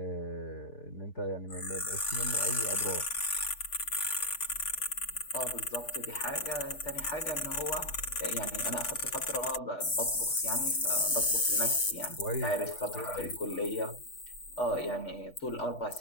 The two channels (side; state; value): right; late; 3.5 ms